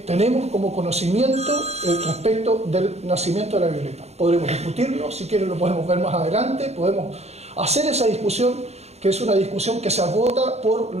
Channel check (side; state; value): left; late; 0.31 ms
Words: tenemos como conocimiento respecto del nacimiento de la Violeta. Podremos discutirlo, si quieren lo podemos ver más adelante, podemos hacer esa discusión, que es una discusión que se agota por